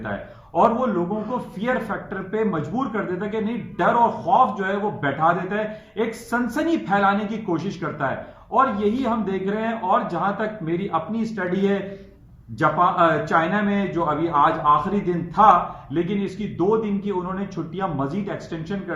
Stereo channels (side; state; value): both; identical; correlation 1.00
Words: है, और वो लोगों को फियर फैक्टर पे मजबूर कर देता है कि नहीं, डर और खौफ जो है वो बैठा देता है, एक सनसनी फैलाने की कोशिश करता है। और यही हम देख रहे हैं। और जहां तक मेरी अपनी स्टडी है, जापान चाइना में जो अभी आज आखिरी दिन था, लेकिन इसकी 2 दिन की उन्होंने छुट्टियां मजीद एक्सटेंशन